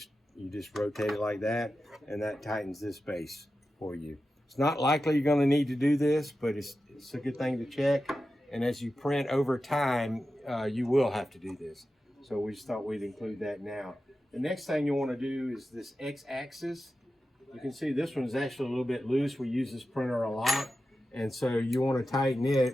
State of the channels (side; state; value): both; normal; correlation 0.92